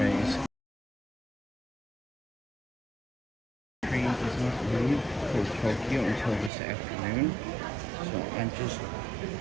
train does not leave for Tokyo until this afternoon, so I'm just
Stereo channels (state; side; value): drops out; left; at 6.5 s